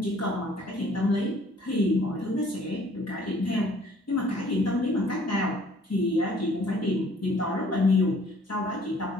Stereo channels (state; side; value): normal; both; correlation 0.57